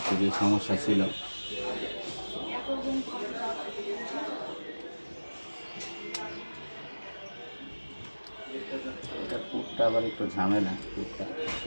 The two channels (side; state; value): both; inverted; correlation -1.00